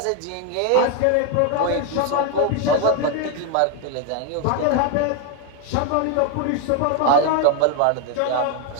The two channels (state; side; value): different; both; correlation 0.01